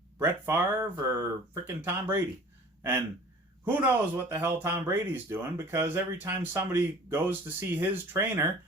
Brett Favre or frickin' Tom Brady. And who knows what the hell Tom Brady's doing, because every time somebody goes to see his trainer,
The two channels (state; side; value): normal; both; correlation 0.46